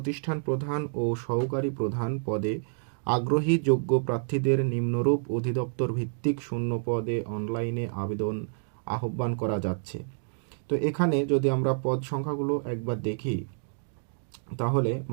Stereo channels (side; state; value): left; silent; digital silence